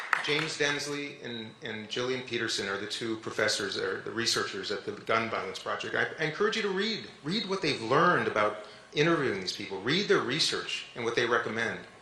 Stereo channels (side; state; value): both; identical; correlation 1.00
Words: James Densley and Gillian Peterson are the two professors, or the researchers at the Gun Violence Project. I encourage you to read what they've learned about interviewing these people, read their research and what they recommend.